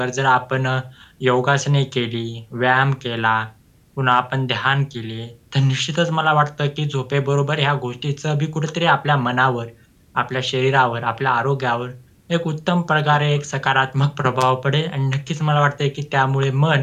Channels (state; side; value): identical; both; correlation 1.00